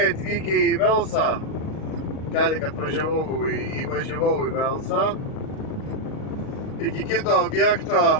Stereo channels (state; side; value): late; right; 38 ms